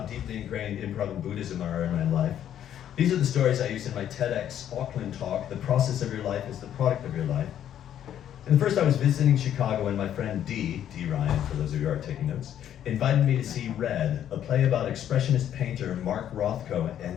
deeply ingrained improv and Buddhism are in my life. These are the stories I use in my TEDx Auckland talk, "The process of your life is the product of your life." And first I was visiting Chicago, and my friend D Ryan, for those of you who are taking notes, invited me to see Red, a play about expressionist painter Mark Rothko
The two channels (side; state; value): right; quieter; 10.4 dB